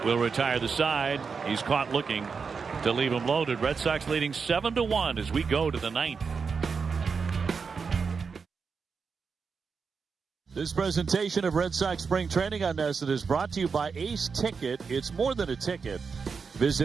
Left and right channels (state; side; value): quieter; left; 5.4 dB